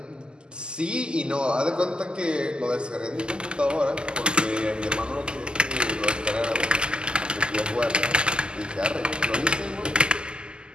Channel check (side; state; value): left; late; 0.048 ms